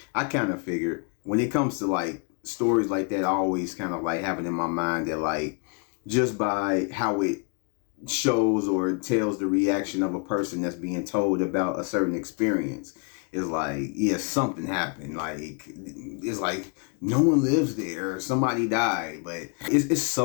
I kind of figured when it comes to like stories like that, I always kind of like have it in my mind that like just by how it shows or tells the reaction of a person that's being told about a certain experience, is like, yeah, something happened. Like, it's like no one lives there, somebody died. But it's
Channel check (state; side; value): quieter; right; 37.7 dB